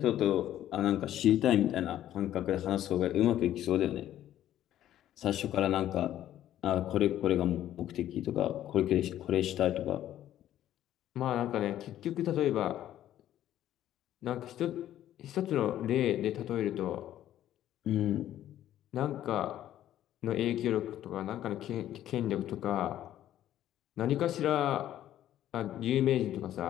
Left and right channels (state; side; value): quieter; right; 12.3 dB